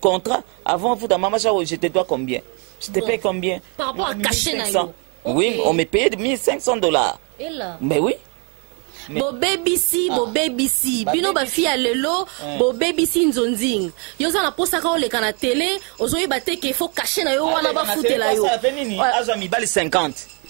avant futa mama cha je te dois combien je te paye combien par rapport à cacher na yo. Oui, on me payait $1,500. Et là? Mais oui. Bo BBC, bino ba fi alelo, bo BBC nzonzing. Yo za na posa ka ole kana télé, ozoyi ba te ke faut cacher na yo wana ba futela yo. Azo mi bali 50.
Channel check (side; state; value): left; quieter; 35.2 dB